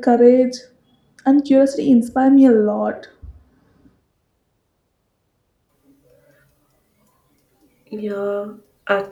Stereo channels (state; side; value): identical; both; correlation 1.00